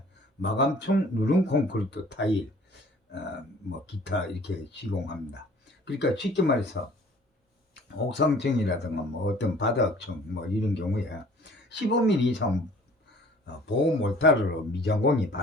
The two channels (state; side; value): normal; both; correlation 0.52